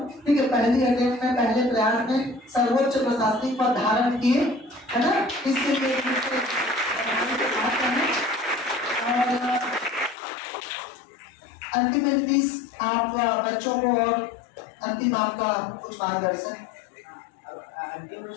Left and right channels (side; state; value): right; drops out; at 10.2 s